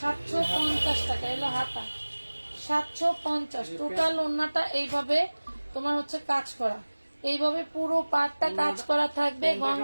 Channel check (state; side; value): inverted; both; correlation -1.00